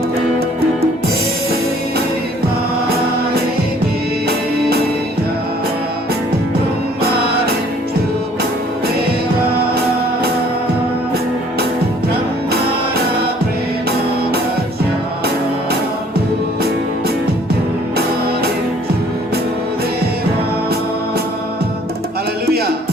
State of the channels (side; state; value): both; normal; correlation 0.58